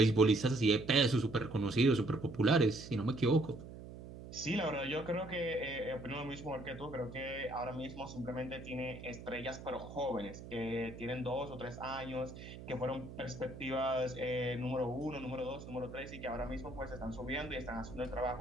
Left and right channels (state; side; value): noise; right; hum, 13 dB below the sound